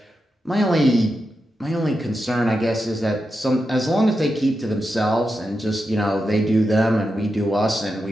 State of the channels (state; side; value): normal; both; correlation 0.88